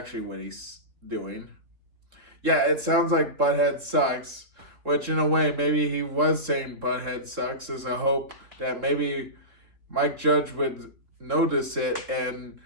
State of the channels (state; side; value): late; left; 3.7 ms